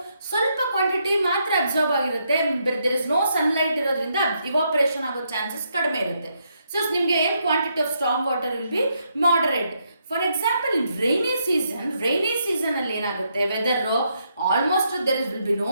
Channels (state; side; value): inverted; both; correlation -0.77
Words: ಸ್ವಲ್ಪ ಕ್ವಾಂಟಿಟಿ ಮಾತ್ರ ಅಬ್ಸರ್ವ್ ಆಗಿರುತ್ತೆ. ದೇರ್ ಇಸ್ ನೋ ಸನ್ಲೈಟ್ ಇರೋದ್ರಿಂದ ಇವಾಪರೇಷನ್ ಆಗೋ ಚಾನ್ಸಸ್ ಕಡಿಮೆ ಇರುತ್ತೆ. ಸೊ ನಿಮಗೆ ಏನು quantity of storm water will be moderate. For example in rainy season ಅಲ್ಲಿ ಏನಾಗುತ್ತೆ, weather almost there will be no